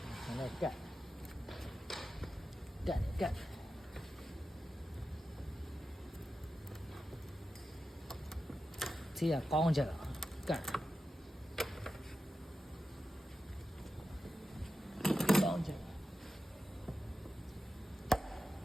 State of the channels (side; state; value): both; normal; correlation 0.91